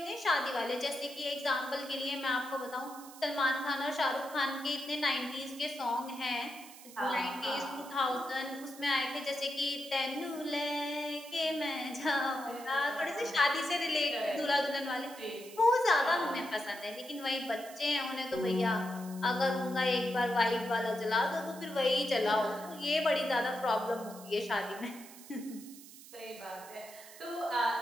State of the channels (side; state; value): right; noise; hiss, 17 dB below the sound